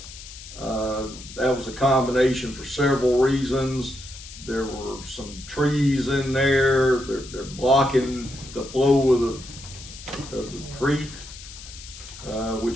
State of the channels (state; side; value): noise; left; hiss, 15 dB below the sound